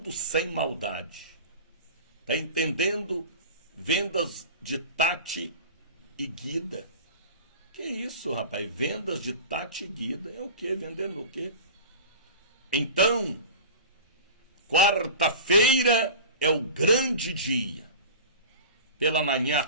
sem maldade. Está entendendo? Vendas de Tati e Guida. Que isso, rapaz? Vendas de Tati e Guida. É o quê? Vendendo o quê? Então, quarta-feira é o grande dia. Pela manhã, à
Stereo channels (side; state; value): both; inverted; correlation -0.36